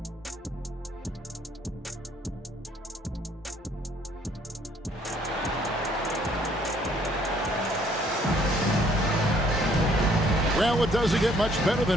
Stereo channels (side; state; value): both; normal; correlation 0.63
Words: Well, it doesn't get much better